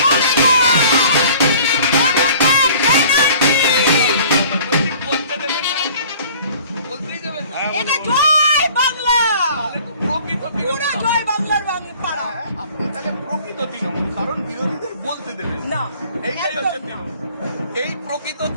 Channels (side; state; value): both; inverted; correlation -0.50